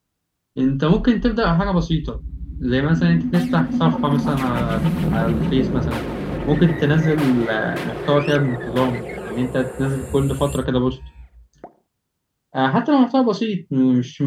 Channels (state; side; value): identical; both; correlation 1.00